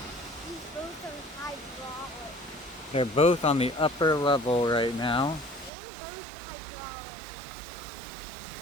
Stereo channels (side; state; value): left; drops out; at 5.7 s